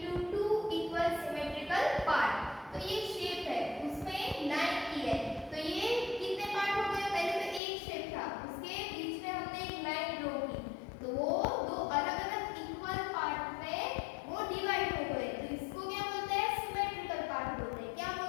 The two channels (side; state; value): right; drops out; at 7.6 s